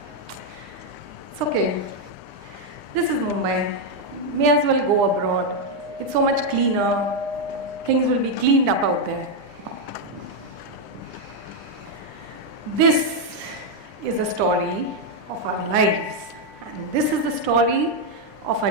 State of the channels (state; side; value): late; left; 9.9 ms